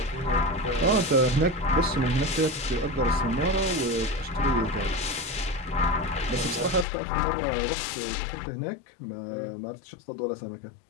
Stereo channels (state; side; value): drops out; right; at 6.9 s